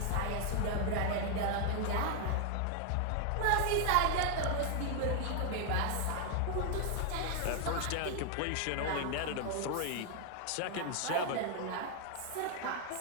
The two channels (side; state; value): both; different; correlation 0.00